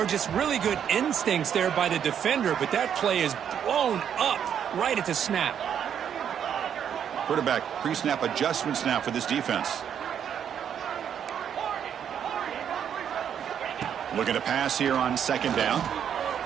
just really good instincts there by the defender, but that play is blown up right at the snap. Quarterback pre-snap adjustments now for this defense. Looking to pass here on second down.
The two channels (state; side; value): quieter; left; 8.7 dB